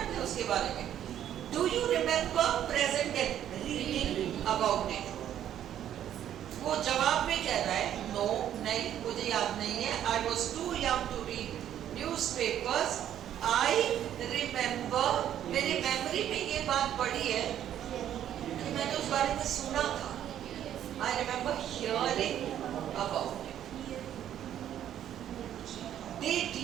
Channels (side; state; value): left; quieter; 10.8 dB